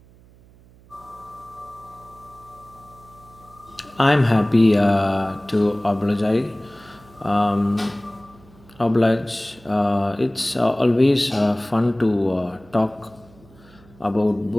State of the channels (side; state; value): right; noise; hum, 26 dB below the sound